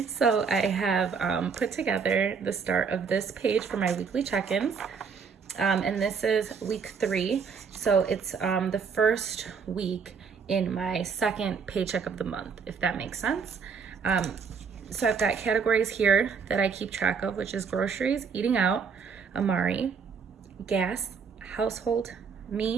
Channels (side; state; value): left; quieter; 5.9 dB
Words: So I have put together the start of this page for my weekly check-ins. And this is week 3. So it's the first week in my second paycheck of the month, if that makes sense. So I've got categories here that I keep track of, which is groceries, eating out, Amari, gas, household,